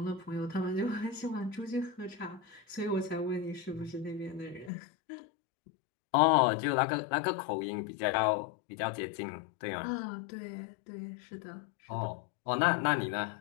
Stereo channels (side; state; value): right; drops out; at 4.7 s